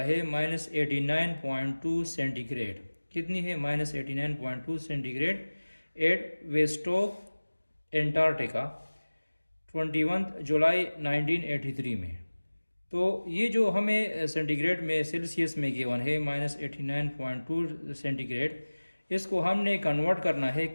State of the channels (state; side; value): inverted; both; correlation -1.00